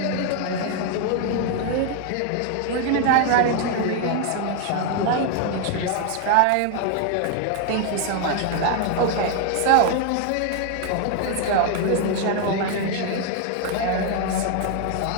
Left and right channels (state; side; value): different; both; correlation 0.00